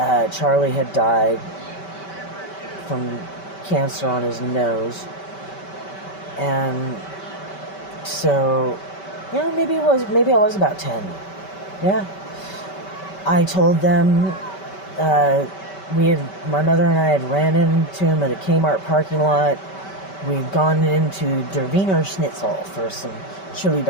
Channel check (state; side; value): late; right; 5.2 ms